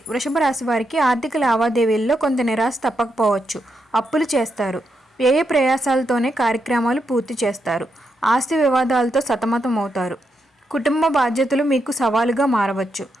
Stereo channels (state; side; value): normal; both; correlation 0.82